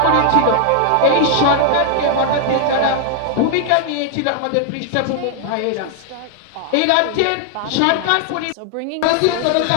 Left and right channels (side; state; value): both; different; correlation 0.00